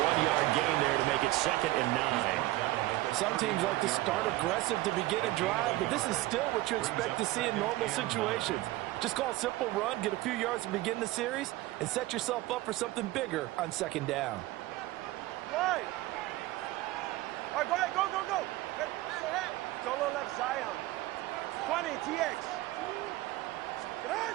1-yard gain there to make it 2nd and 9. Some teams like to start aggressive to begin a drive, but this is still what you expect to see in normal situations. Just call a simple run, get a few yards to begin the series, and set yourself up for something bigger on 2nd down. Right. All right, go ahead, go. Solo left Zion. 20, TX.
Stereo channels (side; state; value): left; quieter; 17.8 dB